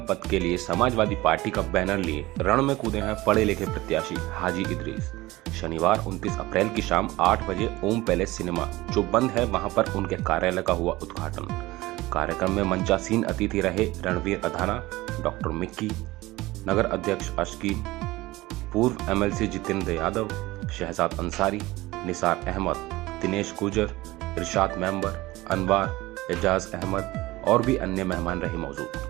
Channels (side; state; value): left; quieter; 19.1 dB